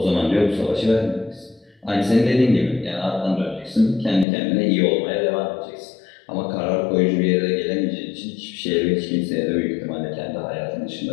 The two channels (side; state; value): right; drops out; at 4.2 s